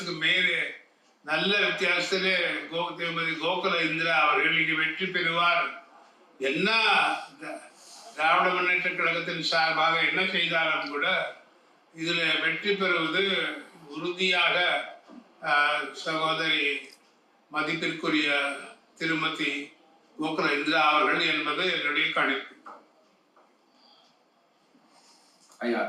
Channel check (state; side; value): identical; both; correlation 1.00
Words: மேலே, நல்ல வித்தியாசத்திலே திருமதி கோகுல இந்திரா அவர்கள் இங்கே வெற்றி பெறுவார். என்ன திராவிட முன்னேற்ற கழகத்தின் சார்பாக என்ன செய்தாலும் கூட இதில் வெற்றி பெறுவது உறுதியாக சகோதரி மதிப்பிற்குரிய திருமதி கோகுல இந்திரா அவர்கள் என்பது என்னுடைய கணிப்பு. ஐயா,